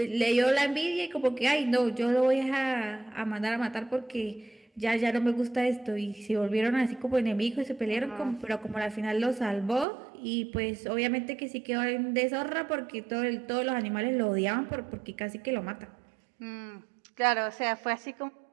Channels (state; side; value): drops out; left; at 9.9 s